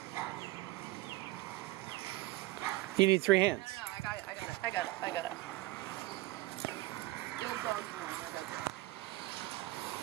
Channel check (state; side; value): quieter; left; 18.7 dB